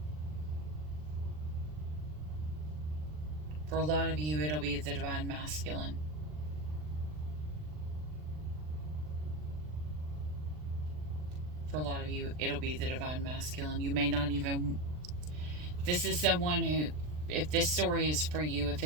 For a lot of you, it'll be the divine masculine. For a lot of you, it'll be the divine masculine. You may not even... This is someone who, if this story is for you, if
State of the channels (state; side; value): late; left; 39 ms